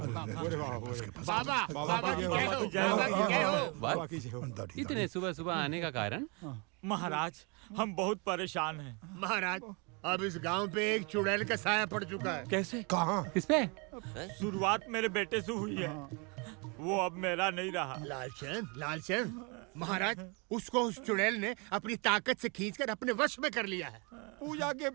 बाबा इतने सुबह सुबह आने का कारण? महाराज, हम बहुत परेशान हैं। महाराज, अब इस गांव पे एक चुड़ैल का साया पड़ चुका है। कैसे? कहाँ? किस पे? शुरुआत मेरे बेटे से हुई है, वो अब मेरा नहीं रहा। लालचंद, महाराज, उसको उस चुड़ैल ने अपनी ताकत से खींचकर अपने वश में कर लिया है। पूजा के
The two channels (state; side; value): quieter; left; 31.8 dB